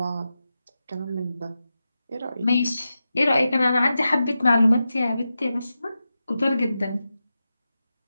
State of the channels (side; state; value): both; inverted; correlation -0.91